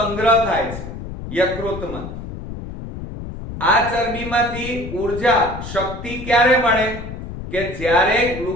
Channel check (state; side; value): noise; left; rumble, 9 dB below the sound